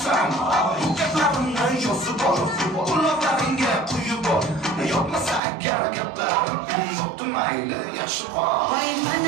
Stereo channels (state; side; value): drops out; left; at 5.4 s